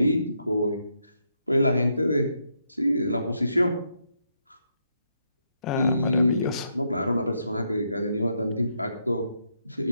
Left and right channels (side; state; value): both; inverted; correlation -0.78